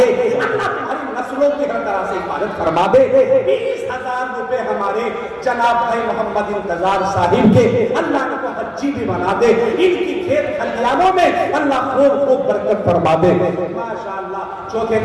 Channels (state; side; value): identical; both; correlation 1.00